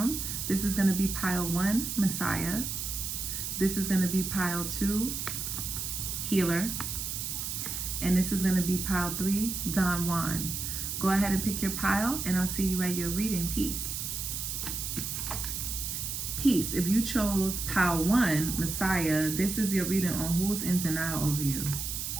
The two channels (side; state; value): right; noise; hiss, 4 dB below the sound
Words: This is going to be pile 1, Messiah. This is going to be pile 2, Healer. And this is going to be pile 3, Don Juan. Go ahead and pick your pile and I'll see you at your reading. Peace. Peace. If you chose pile 1, Messiah, this is your reading on who's in denial over you.